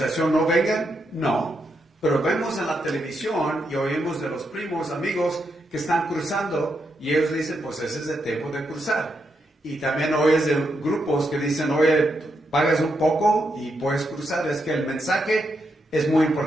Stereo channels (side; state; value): both; normal; correlation 0.82